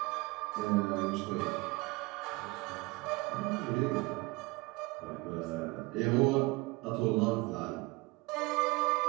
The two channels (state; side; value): quieter; left; 23.6 dB